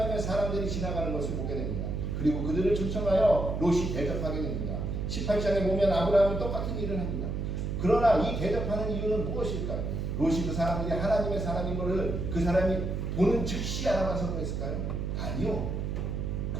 사람들이 지나가는 것을 보게 됩니다. 그리고 그들을 초청하여 롯이 대접하게 됩니다. 18장에 보면 아브라함은 똑같은 일을 합니다. 그러나 이 대접하는 이유는 무엇일까요? 롯이 그 사람들이 하나님의 사람인 것을 그 사람이 보는 즉시 알아봐서 그랬을까요? 아니요.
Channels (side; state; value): right; noise; hum, 2 dB below the sound